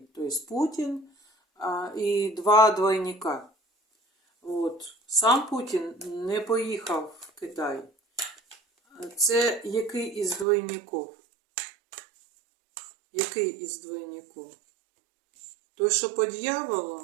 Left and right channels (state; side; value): drops out; left; at 10.5 s